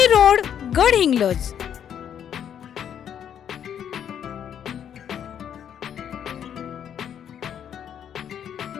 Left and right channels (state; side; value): quieter; right; 9.1 dB